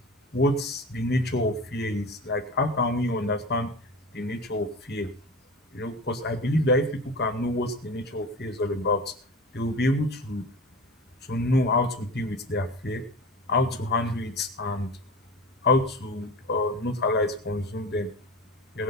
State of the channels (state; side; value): normal; both; correlation 0.32